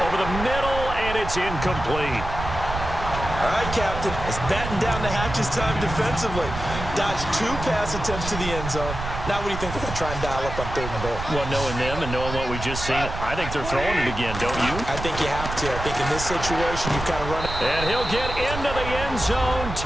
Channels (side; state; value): right; noise; rumble, 7 dB below the sound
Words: Over the middle, and it's incomplete. All right, Captain. It's batten down the hatches time defensively. Dodged 2 pass attempts to the end zone. Now what do you think they're going to try and dial up on 3rd and goal? Well, knowing them and knowing what we just seen, I think they're throwing it again, don't you? I think you have to. I think in this situation, you've got to run it. And he'll get into the end zone.